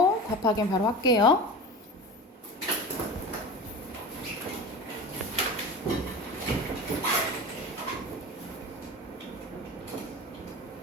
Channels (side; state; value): both; normal; correlation 0.32